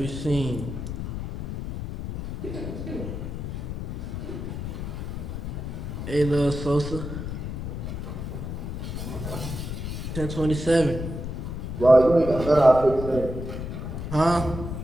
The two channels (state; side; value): noise; left; rumble, 6 dB below the sound